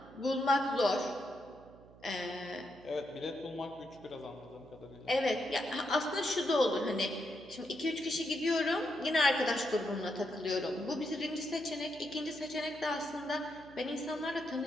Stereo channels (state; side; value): noise; right; hum, 22 dB below the sound